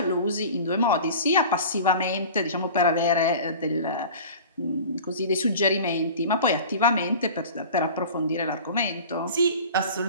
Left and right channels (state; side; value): inverted; both; correlation -0.38